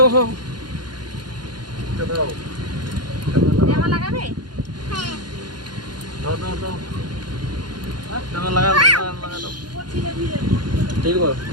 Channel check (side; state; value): left; late; 0.71 ms